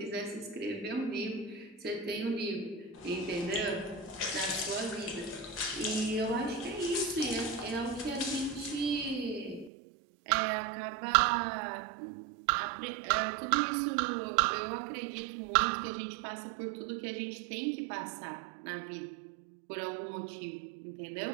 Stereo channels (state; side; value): drops out; left; at 9.7 s